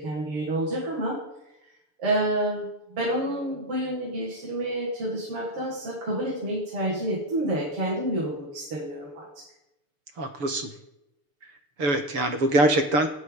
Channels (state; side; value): late; left; 6.8 ms